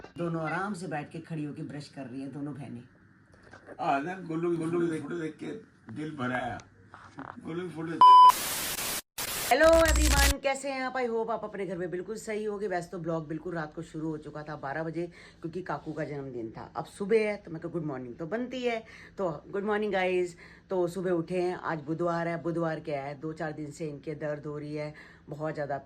दोनों आराम से बैठ के खड़ी होके ब्रश कर रही है दोनों बहनें। ना गोलू गोलू फोटो देख के दिल भरा है। गोलू फोटो। हेलो एवरीवन, कैसे हैं आप? आई होप आप अपने घर में बिल्कुल सही होगे। वैसे तो ब्लॉग बिल्कुल रात को शुरू हो चुका था 12 बजे, क्योंकि काकू का जन्मदिन था। अब सुबह है तो मैं गुड मॉर्निंग तो बनती है, तो गुड मॉर्निंग गाइज। तो सुबह उठे हैं, आज बुधवार है। बुधवार क्या है, 2-4 दिन से इनके दर्द हो रही है बहुत ज़्यादा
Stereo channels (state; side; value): identical; both; correlation 1.00